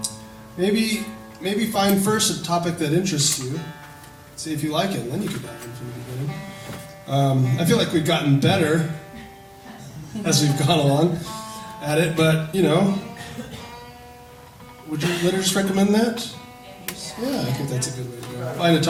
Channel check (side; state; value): both; identical; correlation 1.00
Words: Maybe find first a topic that interests you. See if you like it, and then you can dive in from the beginning. I feel like we've gotten better as we've gone along at it, but would you liturgists recommend that? Yeah, I think that's a good way to go. Find a